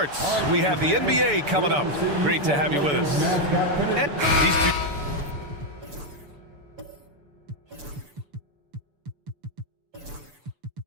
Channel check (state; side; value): late; left; 6.9 ms